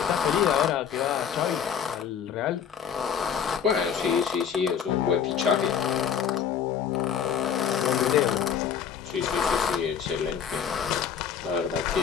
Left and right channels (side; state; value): right; quieter; 7.8 dB